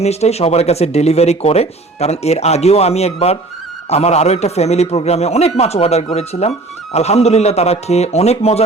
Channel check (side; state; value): left; quieter; 3.2 dB